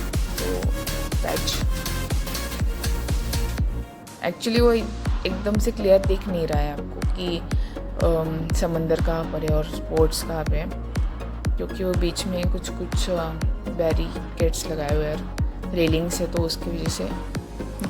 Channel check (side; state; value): both; identical; correlation 1.00